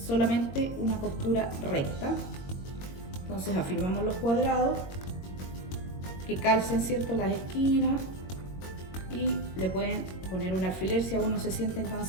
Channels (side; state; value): right; late; 22 ms